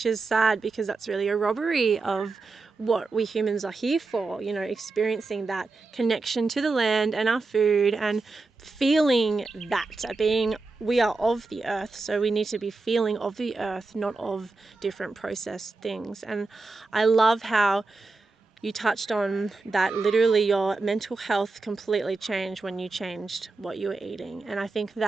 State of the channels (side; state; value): left; quieter; 3.7 dB